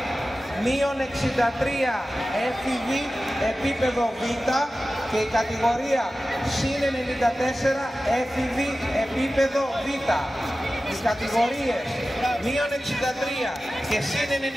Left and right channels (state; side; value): normal; both; correlation 0.95